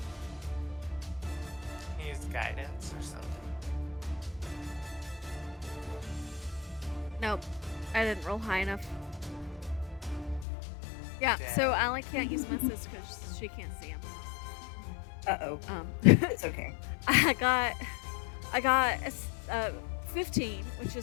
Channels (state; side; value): drops out; right; at 10.5 s